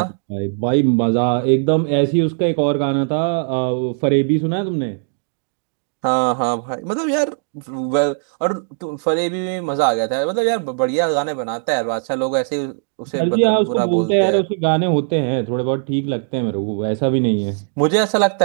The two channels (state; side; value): silent; left; digital silence